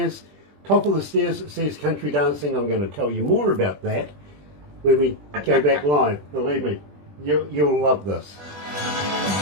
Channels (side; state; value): left; late; 20 ms